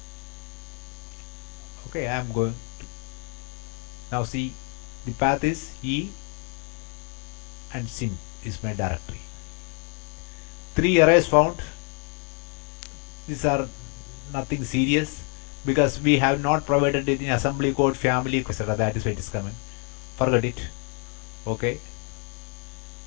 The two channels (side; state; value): right; quieter; 36.2 dB